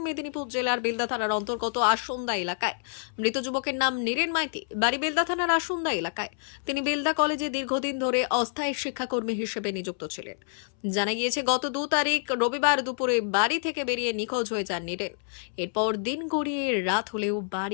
মেদিনীপুর জেলার বেলদা থানার অন্তর্গত আসন্দা এলাকায়। মৃত যুবকের নাম নীরেন মাইতি, বাড়ি বেলদা থানার আসন্দা এলাকায়। তিনি বেলদা কলেজে দীর্ঘদিন ধরে অস্থায়ী শিক্ষাকর্মী হিসেবে নিযুক্ত ছিলেন। জানা গিয়েছে, গত 2 তারিখ রবিবার দুপুরে বাড়ি থেকে বেরিয়ে নিখোঁজ হয়ে যান নীরেন। এরপর দিন গড়িয়ে রাত হলেও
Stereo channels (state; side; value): silent; right; 60 dB below the other